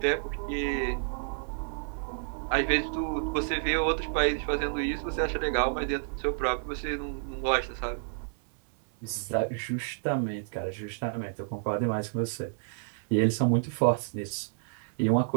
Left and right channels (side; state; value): left; silent; 57 dB below the other